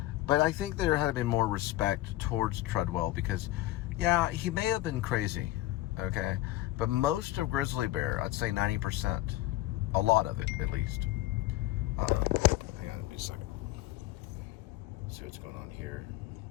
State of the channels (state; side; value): quieter; right; 16.2 dB